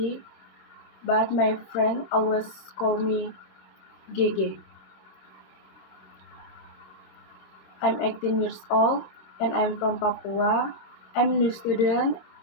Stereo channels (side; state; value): right; late; 26 ms